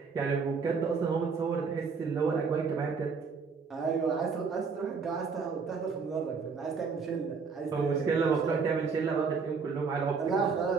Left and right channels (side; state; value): left; quieter; 5.2 dB